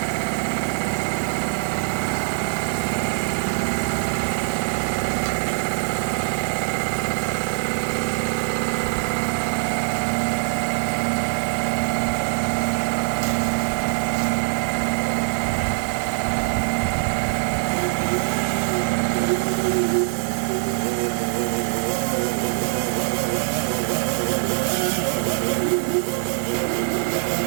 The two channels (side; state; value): left; silent; 62 dB below the other